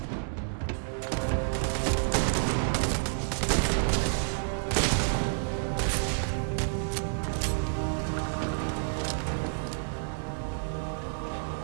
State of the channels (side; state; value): left; silent; digital silence